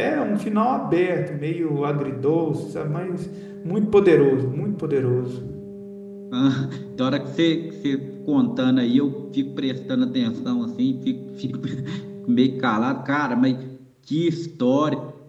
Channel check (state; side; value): identical; both; correlation 1.00